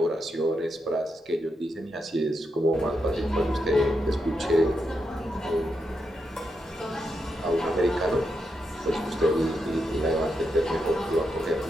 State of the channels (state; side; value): normal; both; correlation 0.84